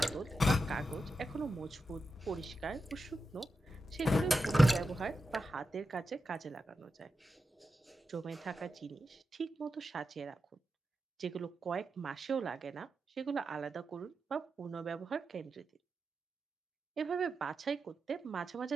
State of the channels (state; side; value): normal; both; correlation 0.90